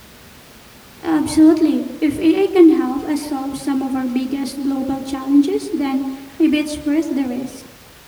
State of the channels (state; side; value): identical; both; correlation 1.00